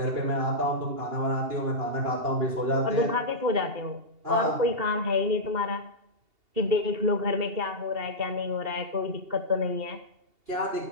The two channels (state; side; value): late; left; 2.7 ms